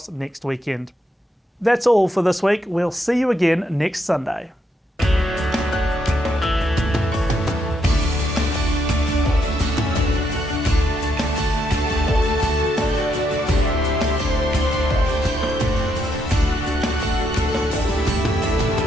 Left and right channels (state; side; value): normal; both; correlation 0.77